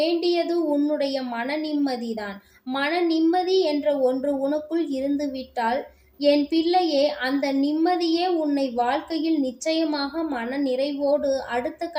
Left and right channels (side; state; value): both; identical; correlation 1.00